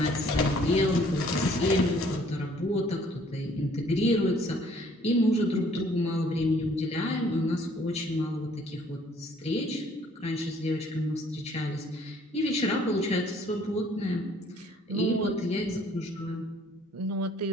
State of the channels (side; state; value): both; normal; correlation 0.59